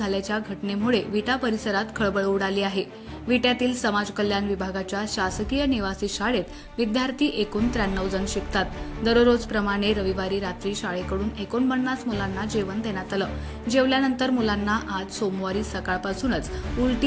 घटनेमुळे विटा परिसरात खळबळ उडाली आहे। विट्यातील समाज कल्याण विभागाच्या शासकीय निवासी शाळेत विद्यार्थी एकूण 93 जण शिकतात। दररोजप्रमाणे रविवारी रात्री शाळेकडून 49 मुलांना जेवण देण्यात आलं। जेवल्यानंतर मुलांना आज सोमवारी सकाळपासूनच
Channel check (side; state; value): both; identical; correlation 1.00